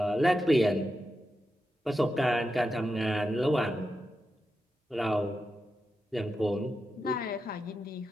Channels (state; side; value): normal; both; correlation 0.88